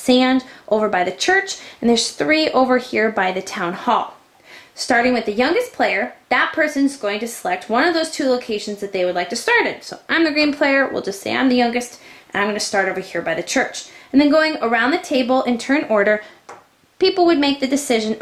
over by the church, and there's 3 over here by the town hall. Starting with the youngest player, that person's going to select one of those 2 locations that they would like to start in. So I'm the green player, we'll just say I'm the youngest, and I'm going to start over here by the church. And then going around the table in turn order, people would make the decision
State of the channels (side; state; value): both; identical; correlation 1.00